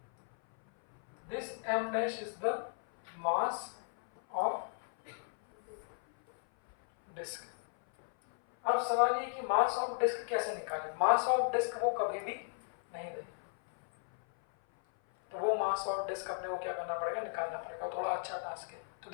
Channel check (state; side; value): silent; right; 54 dB below the other